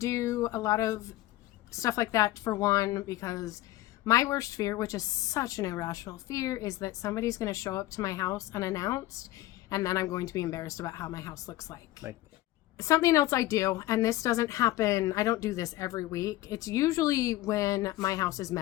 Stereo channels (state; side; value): quieter; right; 16.7 dB